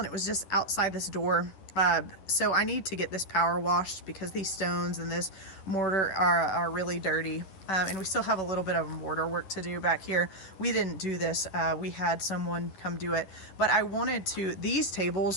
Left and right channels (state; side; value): late; right; 11 ms